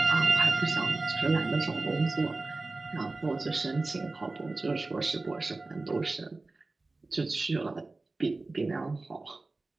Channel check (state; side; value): quieter; left; 3.3 dB